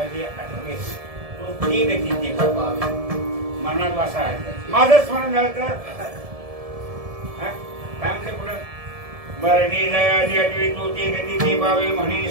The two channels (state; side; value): late; left; 1.7 ms